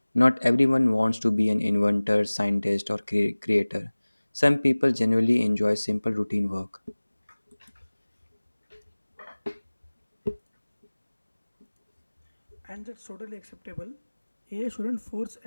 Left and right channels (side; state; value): both; inverted; correlation -1.00